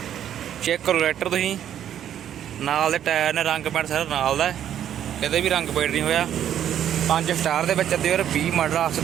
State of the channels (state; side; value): quieter; left; 10.3 dB